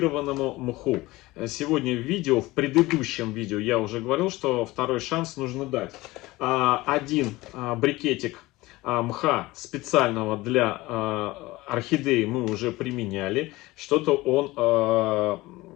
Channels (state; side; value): quieter; right; 19.8 dB